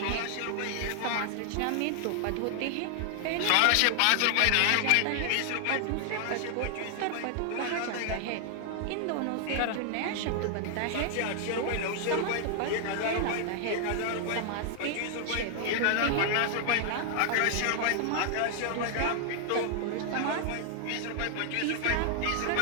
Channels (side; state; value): both; different; correlation 0.00